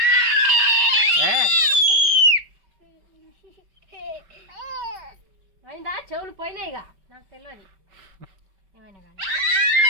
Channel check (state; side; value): late; left; 5.2 ms